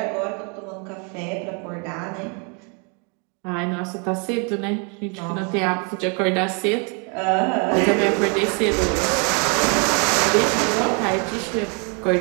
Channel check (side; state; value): left; quieter; 35.8 dB